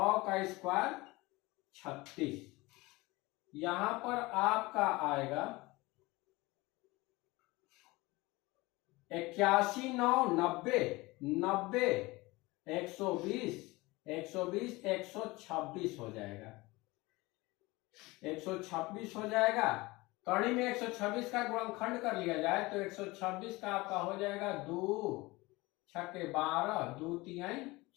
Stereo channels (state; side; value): quieter; right; 22.0 dB